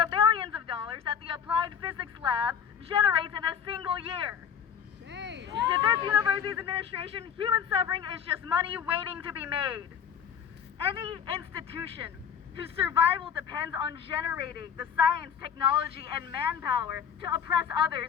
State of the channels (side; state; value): right; quieter; 7.8 dB